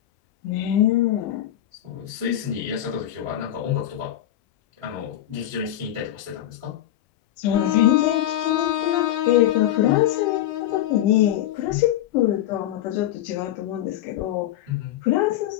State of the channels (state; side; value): quieter; right; 12.6 dB